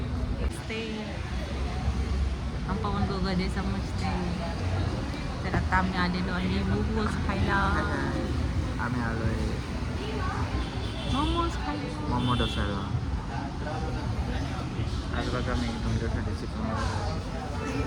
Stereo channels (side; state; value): both; identical; correlation 1.00